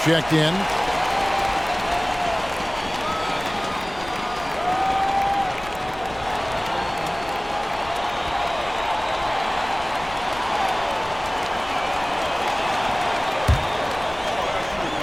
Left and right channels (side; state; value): left; noise; rumble, 17 dB below the sound